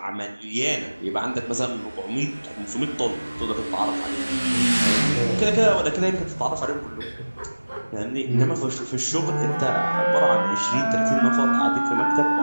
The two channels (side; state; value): both; inverted; correlation -1.00